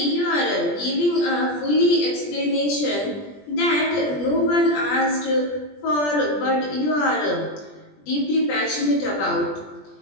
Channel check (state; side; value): late; right; 20 ms